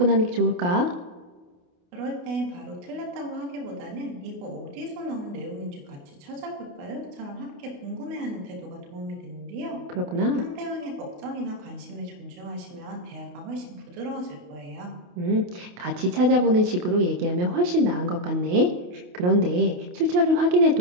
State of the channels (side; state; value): left; late; 28 ms